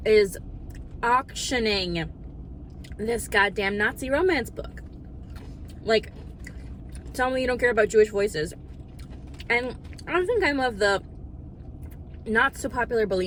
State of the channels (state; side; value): identical; both; correlation 1.00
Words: is auctioning this goddamn Nazi romance book. Like, tell me you don't care about Jewish voices. And I don't think I'm of the not so popular